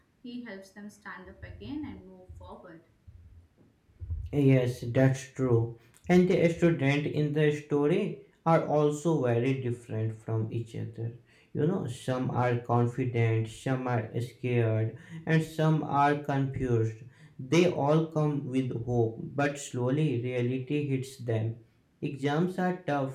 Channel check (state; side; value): identical; both; correlation 1.00